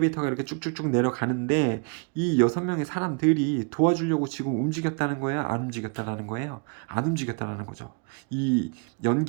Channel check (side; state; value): left; quieter; 36.0 dB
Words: 이렇게 쭉쭉쭉 내려가는데 이 6명의 사람들이 도와주려고 지금 움직였다는 거예요? 안 움직였다는 거예요? 안 움직였다는 거죠. 이